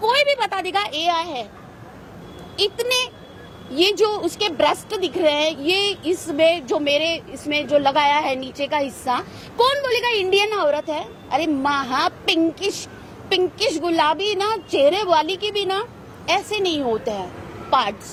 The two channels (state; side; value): identical; both; correlation 1.00